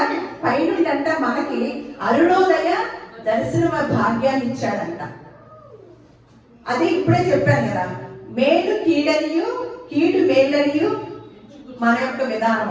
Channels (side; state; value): both; identical; correlation 1.00